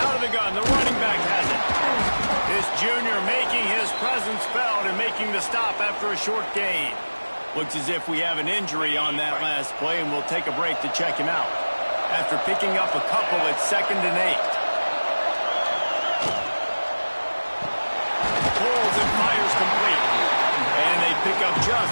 Out of the gun, the running back has it. This junior making his presence felt and making the stop after a short gain. Looks as if we have an injury on that last play, and we'll take a break to check him out. After picking up a couple at 2nd and 8. Pulls and fires complete. And they pick up just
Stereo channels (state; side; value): inverted; both; correlation -1.00